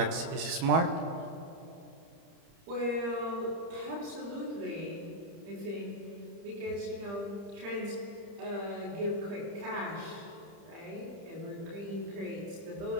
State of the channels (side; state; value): left; late; 30 ms